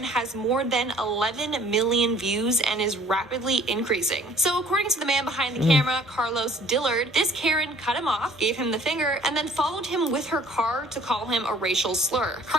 has more than 11 million views and is rapidly increasing. So according to the man behind the camera, Carlos Dillard, this Karen cut him off, gave him the finger, and then followed him with her car to call him a racial slur.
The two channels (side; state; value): both; normal; correlation 0.55